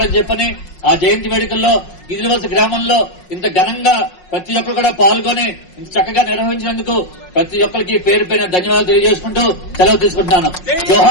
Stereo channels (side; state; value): right; late; 5.5 ms